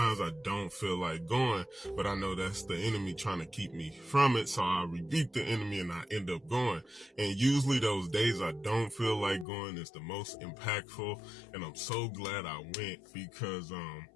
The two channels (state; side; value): drops out; right; at 9.5 s